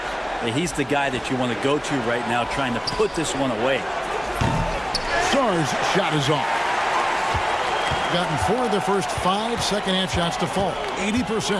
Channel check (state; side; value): identical; both; correlation 1.00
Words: He's the guy that you want to go to right now, trying to put this one away. Sarr's shot is off. Gotten 4 of their first 5 second half shots to fall.